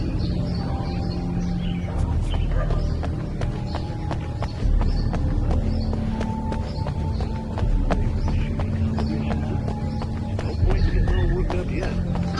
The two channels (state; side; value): identical; both; correlation 1.00